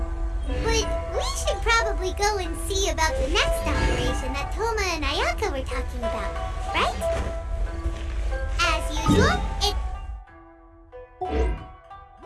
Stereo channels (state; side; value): identical; both; correlation 1.00